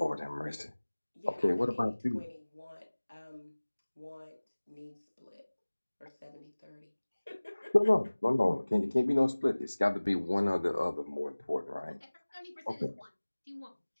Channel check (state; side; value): inverted; both; correlation -1.00